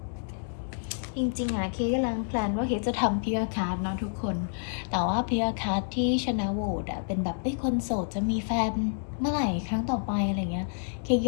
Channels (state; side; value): silent; right; 59 dB below the other